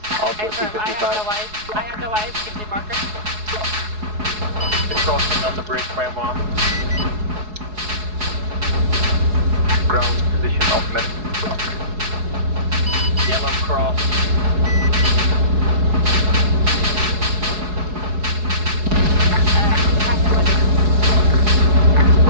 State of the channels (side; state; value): left; late; 4.7 ms